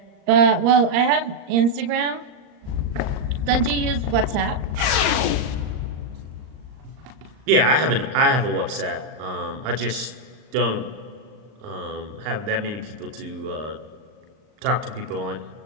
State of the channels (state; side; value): late; left; 39 ms